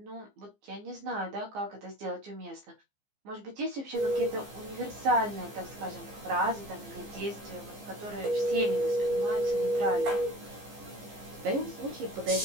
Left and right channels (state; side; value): late; left; 15 ms